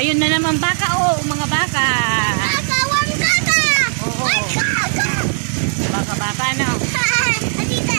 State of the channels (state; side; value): silent; left; 61 dB below the other